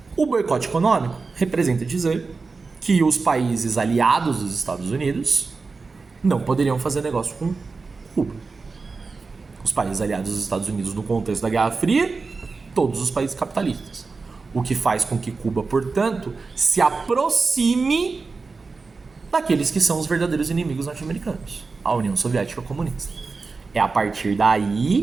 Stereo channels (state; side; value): quieter; left; 4.3 dB